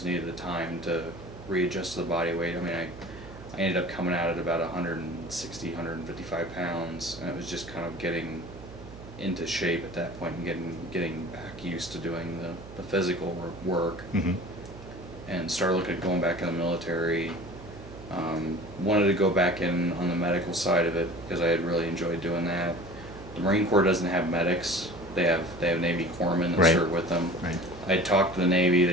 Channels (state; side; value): noise; right; hum, 15 dB below the sound